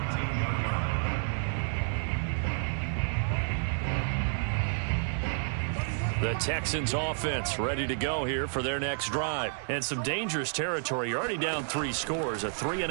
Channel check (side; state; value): left; silent; digital silence